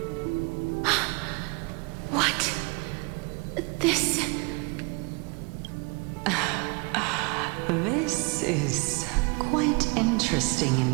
What? This... This is quite interesting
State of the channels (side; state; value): left; quieter; 29.6 dB